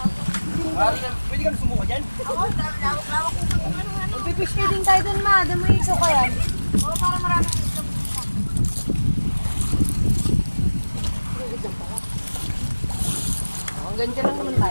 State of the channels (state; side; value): inverted; both; correlation -1.00